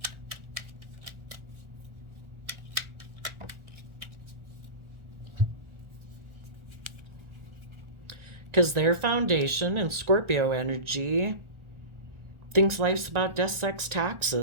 Because their foundation in Scorpio energy thinks life's about death, sex,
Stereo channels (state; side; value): late; left; 1.4 ms